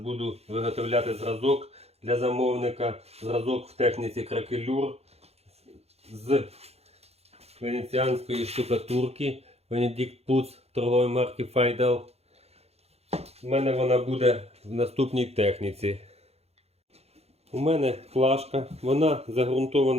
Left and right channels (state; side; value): late; left; 0.30 ms